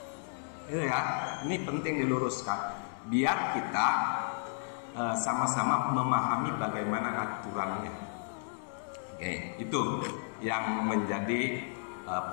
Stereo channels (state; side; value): silent; right; digital silence